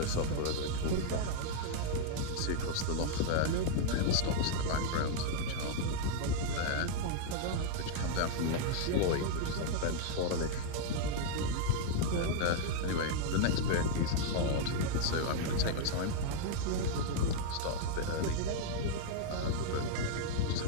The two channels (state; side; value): different; both; correlation -0.01